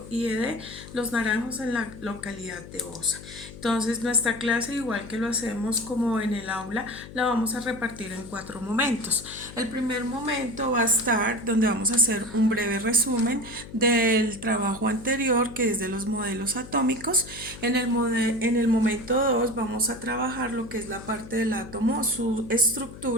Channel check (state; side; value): noise; left; hum, 15 dB below the sound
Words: IED Los Naranjos en la localidad de Osa. Entonces nuestra clase, igual que lo hacemos como en el aula, la vamos a repartir en 4 momentos. El primer momento va a estar donde vamos a hacer un breve resumen del trabajo anterior, que es de los modelos atómicos. En el momento 2 vamos a trabajar lo que es la parte del átomo, su